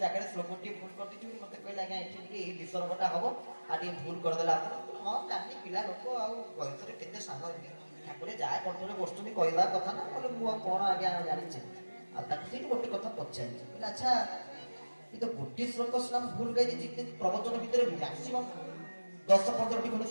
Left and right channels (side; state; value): both; inverted; correlation -1.00